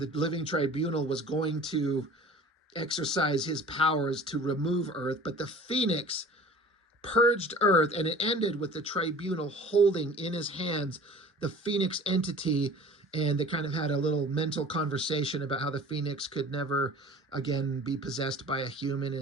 the Living Tribunal was going to exercise his powers to remove Earth. But the Phoenix purged Earth, and it ended with the tribunal holding in his hands the Phoenix entity, and they kind of had a little mental conversation about how the Phoenix could never again be possessed by a human,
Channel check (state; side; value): normal; both; correlation 0.44